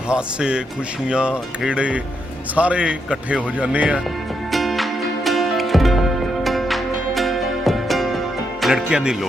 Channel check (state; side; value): normal; both; correlation 0.80